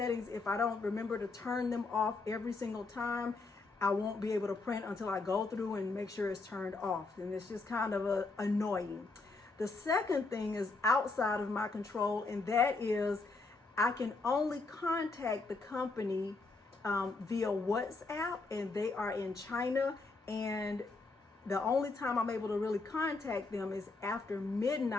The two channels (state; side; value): quieter; right; 3.7 dB